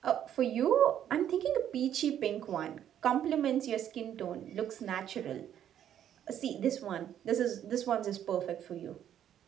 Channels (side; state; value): left; quieter; 10.3 dB